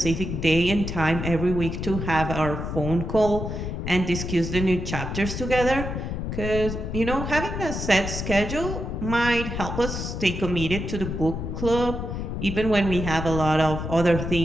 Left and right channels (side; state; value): left; noise; rumble, 5 dB below the sound